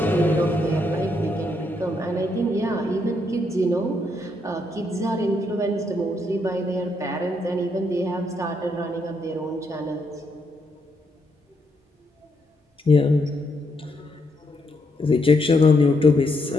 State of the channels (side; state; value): both; normal; correlation 0.76